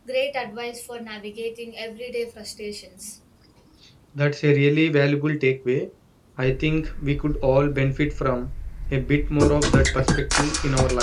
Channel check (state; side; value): identical; both; correlation 1.00